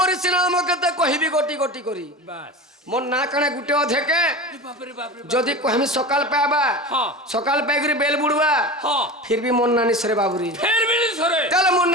নাম কেতে কহিবি গটি গটি করি বাস মোর না কানে গুটে অধেকে বাপরে বাপরে যদি কহমি সকাল পাবা হ্যাঁ সকাল পাইকরি বেল বুড়বা হ্যাঁ ফির বি মন নানি সরে বাবুরি ফের বিলি সরে তাহলে মন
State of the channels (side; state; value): both; normal; correlation 0.29